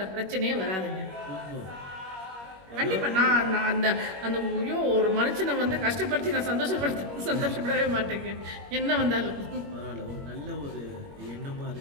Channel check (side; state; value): left; late; 21 ms